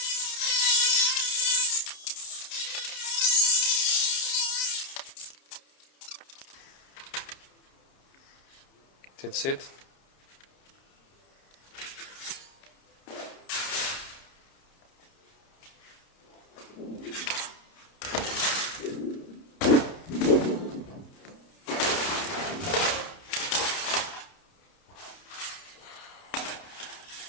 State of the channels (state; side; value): late; right; 30 ms